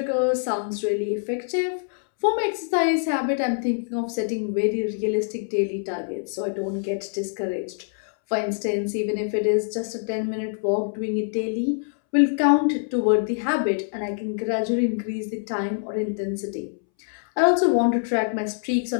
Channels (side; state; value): right; silent; 62 dB below the other